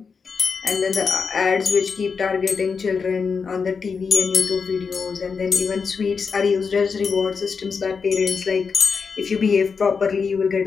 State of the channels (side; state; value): right; quieter; 5.5 dB